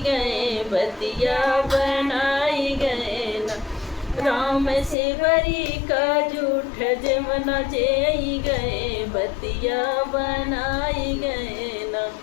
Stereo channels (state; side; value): drops out; right; at 5.0 s